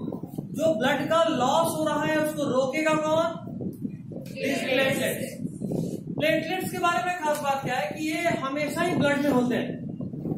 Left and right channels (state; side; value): identical; both; correlation 1.00